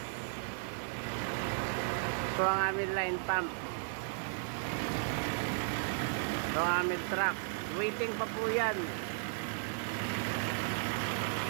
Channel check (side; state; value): left; silent; digital silence